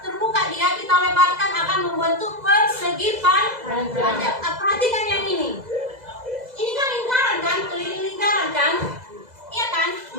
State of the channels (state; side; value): late; left; 2.0 ms